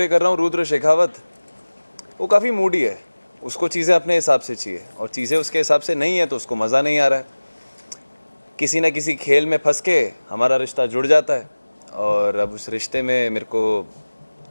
कर रहा हूँ, रुद्र शेखावत, वो काफ़ी मूडी है, उसको चीज़ें अपने हिसाब से चाहिए और चीज़ें उसके हिसाब से नहीं है तो उसको मज़ा नहीं आ रहा है। किसी ना किसी खेल में फंस के हमारा रिश्ता जुड़ जाता है और अब उस रिश्ते में मेरे को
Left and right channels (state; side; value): inverted; both; correlation -1.00